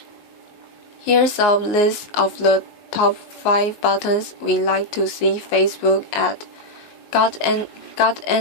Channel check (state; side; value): late; right; 19 ms